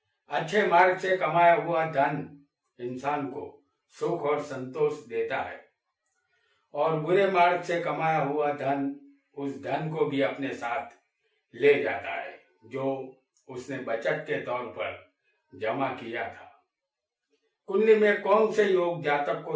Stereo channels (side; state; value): both; identical; correlation 1.00